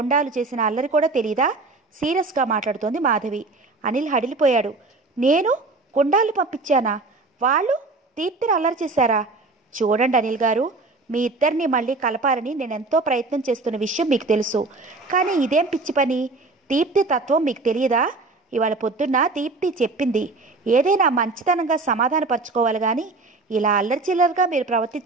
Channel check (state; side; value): quieter; left; 3.5 dB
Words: చేసిన అల్లరి కూడా తెలీదా? సీరియస్గా మాట్లాడుతోంది మాధవి. అనిల్ హడిలిపోయాడు. నేను గుండాలు పంపించానా? వాళ్ళు దీప్తిని అల్లరి చేశారా? చూడండి అనిల్ గారు, మీ ఇద్దరిని మళ్ళీ కలపాలని నేనెంతో ప్రయత్నం చేస్తున్న విషయం మీకు తెలుసు. కానీ ఇదేం పిచ్చి పని? దీప్తి తత్వం మీకు తెలియదా? ఇవాళ పొద్దున్న దీప్తి చెప్పింది. ఏదైనా మంచితనంగా సమాధానపరచుకోవాలి కానీ ఇలా అల్లరి చిల్లరగా మీరు